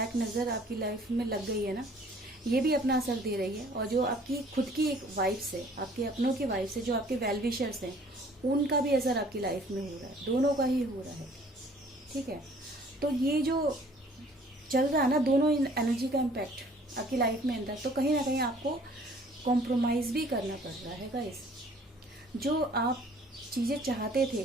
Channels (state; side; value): normal; both; correlation 0.55